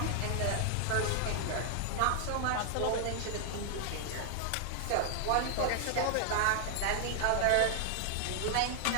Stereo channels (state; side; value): different; both; correlation 0.00